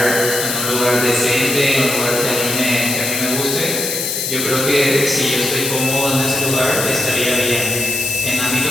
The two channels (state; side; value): noise; left; hiss, 2 dB below the sound